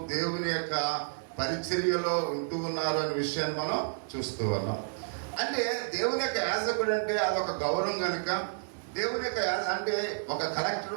దేవుని యొక్క పరిచర్యలో ఉంటూ ఉన్నారు అనే విషయాన్ని మనం చూస్తూ ఉన్నాం. అంటే దేవుని యొక్క యాజకుడు అంటే అదొక గౌరవం కనుక దేవుని యొక్క అంటే ఒక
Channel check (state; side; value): silent; left; 57 dB below the other